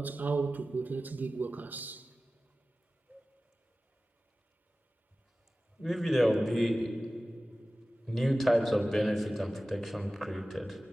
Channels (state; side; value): normal; both; correlation 0.96